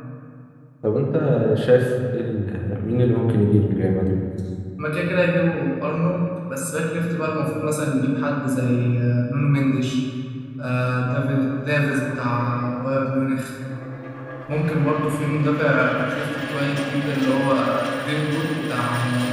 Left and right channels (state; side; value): identical; both; correlation 1.00